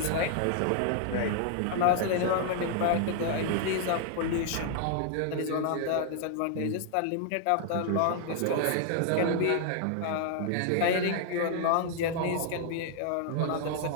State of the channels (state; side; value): different; both; correlation 0.00